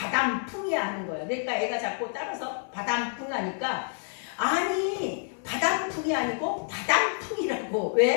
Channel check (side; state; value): right; silent; 59 dB below the other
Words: 하는 거예요. 그러니까 애가 자꾸 따라서 바람풍 하니까 아니 바람풍이 아니고 바람풍이라고.